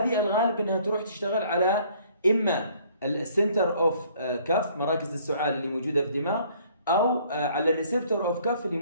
الغالب انها تروح تشتغل على اما السنتر اوف كاف، مراكز السعال اللي موجوده في الدماغ، او على الريسبتور اوف كاف اللي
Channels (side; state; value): both; inverted; correlation -0.59